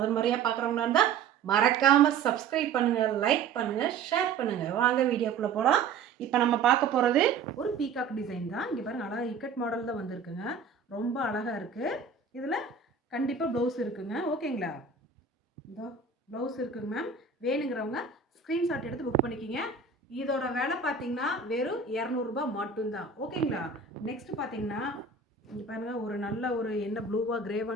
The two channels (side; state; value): left; quieter; 5.7 dB